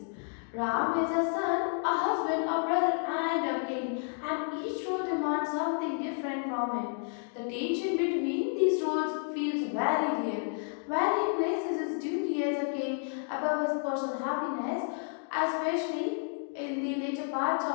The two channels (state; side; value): silent; right; 57 dB below the other